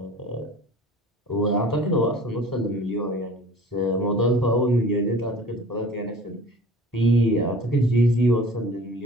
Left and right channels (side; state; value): both; normal; correlation 0.44